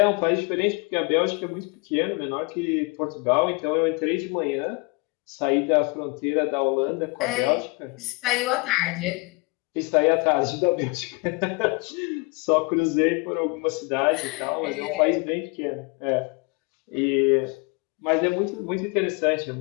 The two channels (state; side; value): quieter; right; 28.9 dB